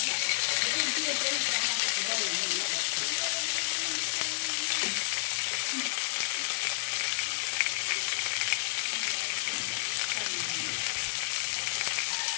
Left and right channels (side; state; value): right; silent; digital silence